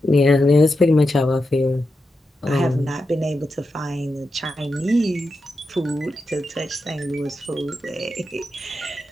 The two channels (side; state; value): both; normal; correlation 0.88